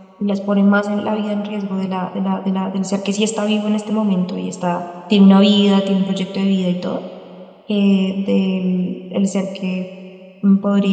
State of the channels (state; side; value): identical; both; correlation 1.00